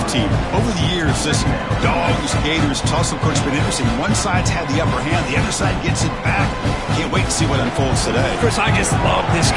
Over the years, this Dogs-Gators tussle, coach, has been interesting. One side's had the upper hand, the other side gets it back. Can't wait to see what unfolds today. Chris, I just love this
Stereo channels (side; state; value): both; identical; correlation 1.00